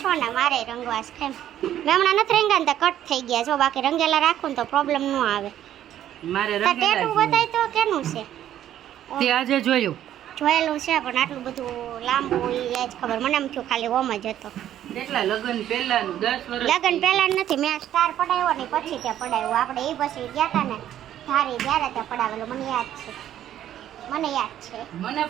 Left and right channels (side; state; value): left; quieter; 11.5 dB